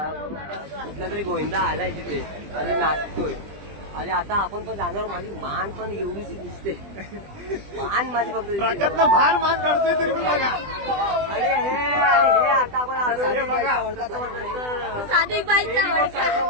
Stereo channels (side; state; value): left; late; 20 ms